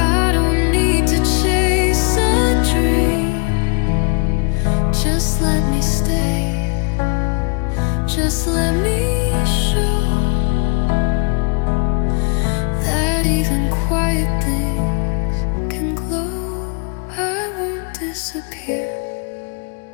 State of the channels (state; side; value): quieter; right; 33.5 dB